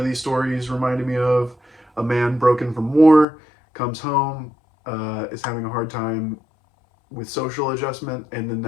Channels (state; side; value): drops out; right; at 3.2 s